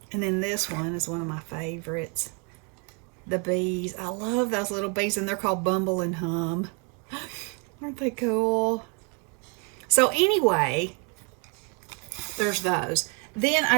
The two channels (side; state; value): left; quieter; 35.8 dB